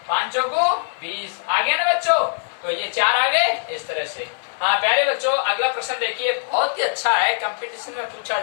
5 को 20 आ गया ना बच्चों, तो ये 4 आ गए इस तरह से। हाँ प्यारे बच्चों, अगला प्रश्न देखिए, बहुत ही अच्छा है, कंपटीशन में पूछा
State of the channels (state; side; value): silent; right; 55 dB below the other